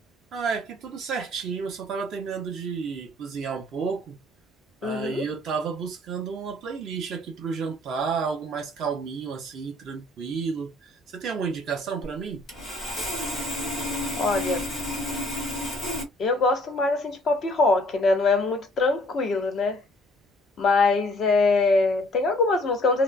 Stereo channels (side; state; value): both; normal; correlation 0.58